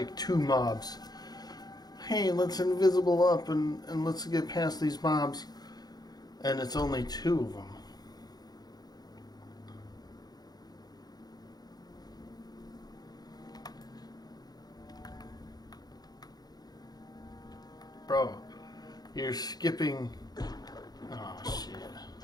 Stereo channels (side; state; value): right; late; 0.19 ms